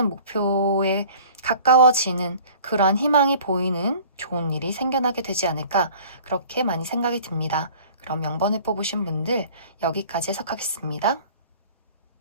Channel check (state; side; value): inverted; both; correlation -0.47